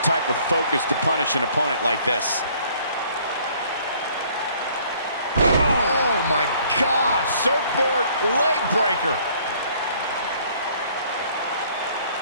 type of focus to punish an opponent like this. Oh my gosh, surfboard leg breaker.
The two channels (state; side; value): inverted; both; correlation -0.59